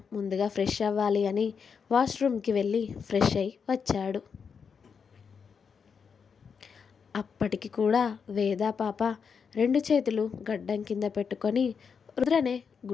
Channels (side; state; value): right; quieter; 6.2 dB